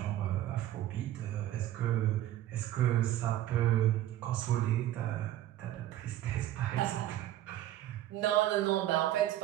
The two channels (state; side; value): quieter; left; 13.2 dB